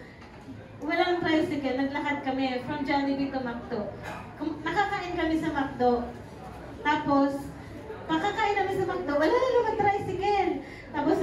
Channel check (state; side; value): identical; both; correlation 1.00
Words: Walang tricycle, naglakad kami from Jollibee to McDo. Nakakain kami sa McDo. Tapos, pakakain namin sa McDo, wala na naman tricycle. Tapos